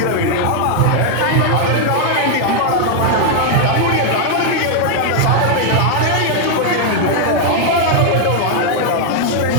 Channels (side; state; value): both; different; correlation 0.00